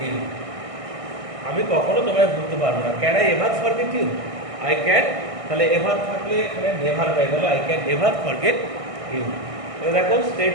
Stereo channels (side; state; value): left; late; 1.6 ms